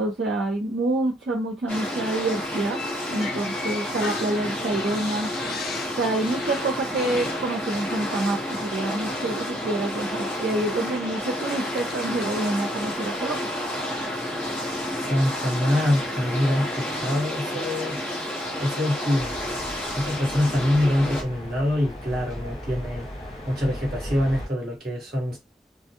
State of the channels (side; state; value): both; normal; correlation 0.73